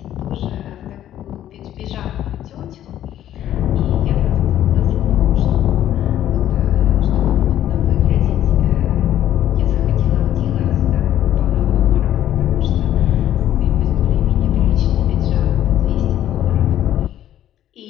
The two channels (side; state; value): right; quieter; 11.8 dB